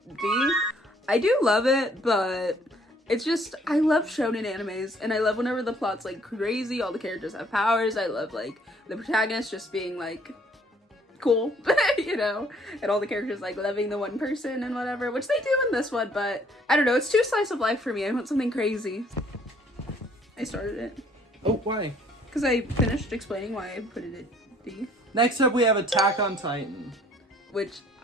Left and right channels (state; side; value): normal; both; correlation 0.61